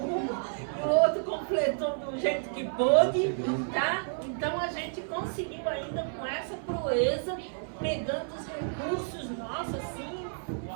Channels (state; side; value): silent; left; 57 dB below the other